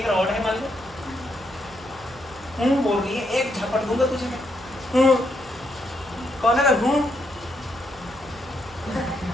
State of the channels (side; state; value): right; noise; hum, 21 dB below the sound